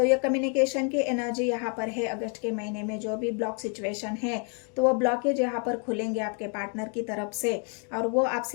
ये कम्युनिकेशन की एनर्जी यहाँ पर है। अगस्त के महीने में जो भी ब्लॉक सिचुएशन है, तो वो ब्लॉकेज यहाँ पर खुलेंगे आपके पार्टनर की तरफ से और वो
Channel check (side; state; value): right; quieter; 39.8 dB